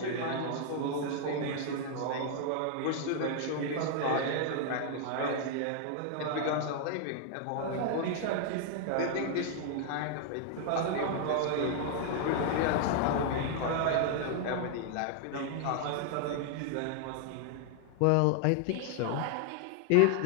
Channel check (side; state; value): both; different; correlation 0.00